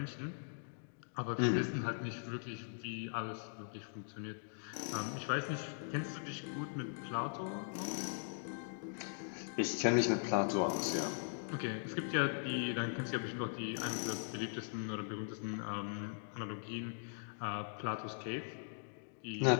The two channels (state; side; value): silent; right; digital silence